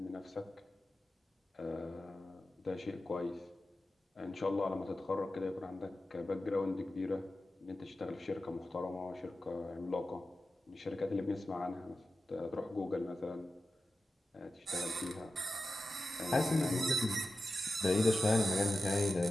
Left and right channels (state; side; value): normal; both; correlation 0.93